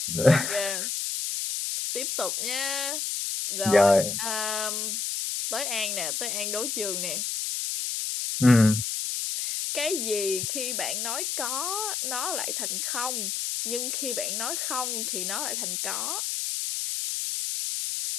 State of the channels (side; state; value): left; noise; hiss, 1 dB below the sound